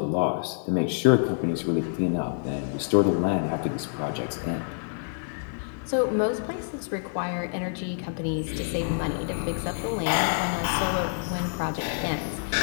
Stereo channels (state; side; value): silent; right; digital silence